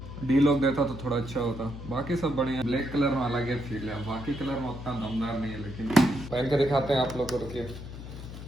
डी लॉक देता तो थोड़ा अच्छा होता। बाकी सब बढ़िया। ब्लैक कलर में अलग ही फील है, बाकी कलर में उतना दमदार नहीं है, लेकिन पहन के दिखाते हैं आप लोग को। रुकिए।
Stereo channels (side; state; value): left; noise; hum, 11 dB below the sound